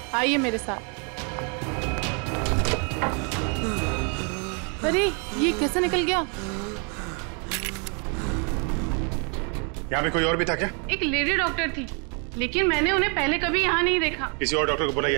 आइए मेरे साथ। अरे ये कैसे निकल गया? यहाँ पे कोई और भी था क्या? एक लेडी डॉक्टर थी लेकिन मैंने उन्हें पहले कभी यहाँ नहीं देखा। किसी और डॉक्टर को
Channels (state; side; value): quieter; left; 36.5 dB